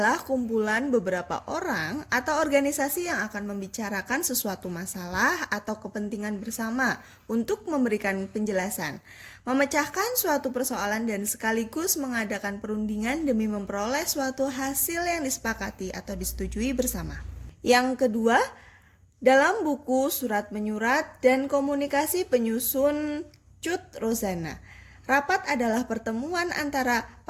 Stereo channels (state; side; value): identical; both; correlation 1.00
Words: kumpulan beberapa orang atau organisasi yang akan membicarakan sesuatu masalah atau kepentingan bersama untuk memberikan penjelasan, memecahkan suatu persoalan dan sekaligus mengadakan perundingan demi memperoleh suatu hasil yang disepakati atau disetujui bersama. Yang kedua, dalam buku Surat Menyurat dan Komunikasi penyusun Cut Rozana, rapat adalah pertemuan antara